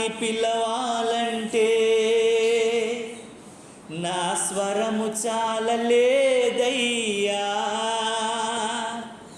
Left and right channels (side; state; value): both; identical; correlation 1.00